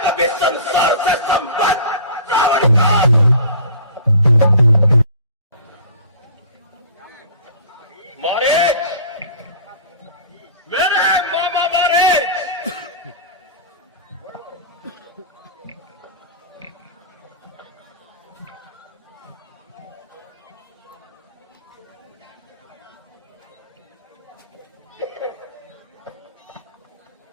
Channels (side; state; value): both; inverted; correlation -0.42